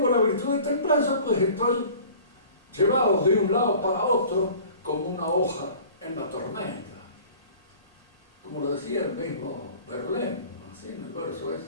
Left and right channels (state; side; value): inverted; both; correlation -0.45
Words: la virtud de templanza, pues estoy llevado de un lado para otro como una hoja en la tormenta. Como lo decía el mismo Verlaine, así en el verso